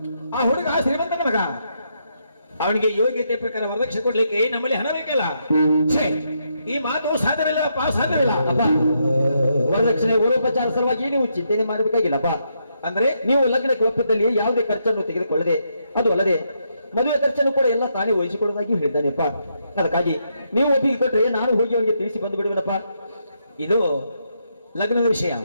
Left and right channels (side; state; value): both; inverted; correlation -0.78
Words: ಆ ಹುಡುಗ ಶ್ರೀಮಂತನ ಮಗ, ಅವನಿಗೆ ಯೋಗ್ಯತೆ ಪ್ರಕಾರ ವರದಕ್ಷಿಣೆ ಕೊಡ್ಲಿಕ್ಕೆ ನಮ್ಮಲ್ಲಿ ಹಣ ಬೇಕಲ್ಲ. ಈ ಮಾತು ಸಾಧ್ಯವಿಲ್ಲಪ್ಪ, ಸಾಧ್ಯವಿಲ್ಲ ಅಪ್ಪ. ವರದಕ್ಷಿಣೆ ಊರೋಪಚಾರ ಸಲುವಾಗಿ ನೀವು ಚಿಂತನೆ ಮಾಡಬೇಕಾಗಿಲ್ಲಪ್ಪ. ಅಂದ್ರೆ ನೀವು ಲಗ್ನಕ್ಕೆ ಒಪ್ಪಿದಲ್ಲಿ ಯಾವುದೇ ಖರ್ಚನ್ನು ತೆಗೆದುಕೊಳ್ಳದೆ, ಅದು ಅಲ್ಲದೆ ಮದುವೆ ಖರ್ಚನ್ನು ಕೂಡ ಎಲ್ಲ ತಾನೇ ವಹಿಸಿಕೊಳ್ಳೋದಾಗಿ ಹೇಳಿದ್ದಾನೆಪ್ಪ. ಅದಕ್ಕಾಗಿ ನೀವು ಒಪ್ಪಿಗೆ ಕೊಟ್ಟರೆ ನಾನು ಹೋಗಿ ಅವನಿಗೆ ತಿಳಿಸಿ ಬಂದು ಬಿಡುವನಪ್ಪ. ಇದು ಲಗ್ನದ ವಿಷಯ.